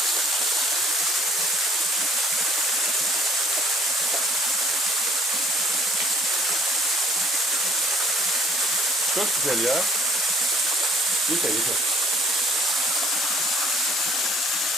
Çok güzel ya. Yeter.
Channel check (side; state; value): both; normal; correlation 0.56